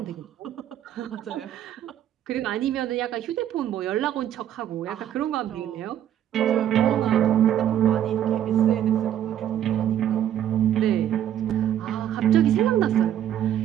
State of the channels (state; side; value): quieter; left; 10.7 dB